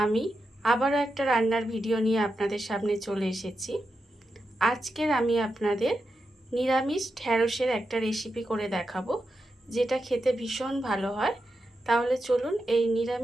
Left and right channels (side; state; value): both; normal; correlation 0.87